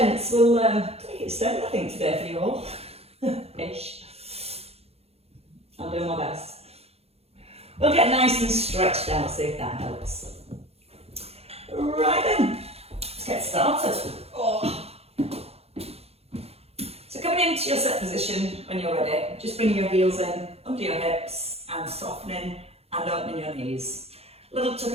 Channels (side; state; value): left; late; 0.29 ms